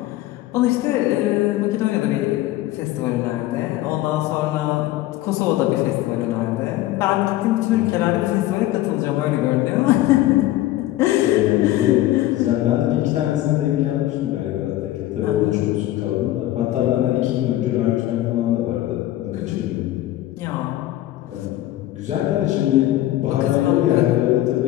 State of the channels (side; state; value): right; quieter; 15.1 dB